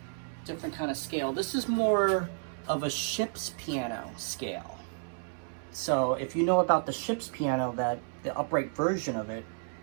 different kind of scale. This is more of a ship's piano scale. So if you know about the ship's piano, that the upright version of it,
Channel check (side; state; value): left; silent; digital silence